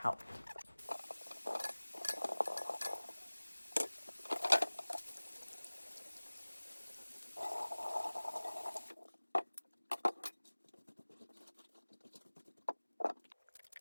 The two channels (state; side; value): inverted; both; correlation -1.00